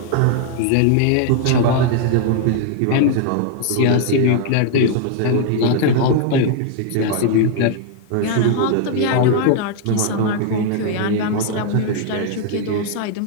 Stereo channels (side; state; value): both; different; correlation 0.00